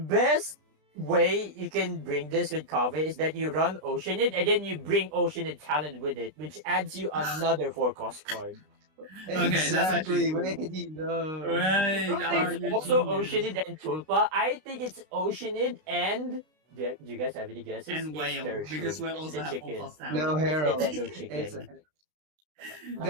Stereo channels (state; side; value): late; left; 32 ms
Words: way you can bring this with Kave is that you run Oceanid and then you bring Oceanid Talent with it, which adds you another 4-cost card. Okay, that's exactly. actually cool. Wait, no. Right. I think it's also Oceanid and Tulpa. I think it's Oceanid and... Do you guys have any guesses? And whale, because we also have chicken. full cost No, talent. Harold. It's the Dendro chicken. It's It's